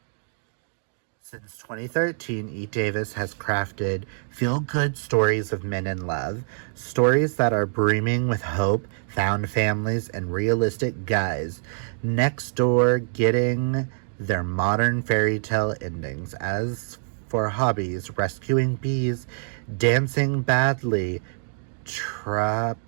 Since 2013, E. Davis has crafted feel-good stories of men in love, stories that are brimming with hope, found families, and realistic guys next door getting their modern fairy tale endings. As for hobbies, rescuing bees, dancing badly,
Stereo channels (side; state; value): left; silent; 62 dB below the other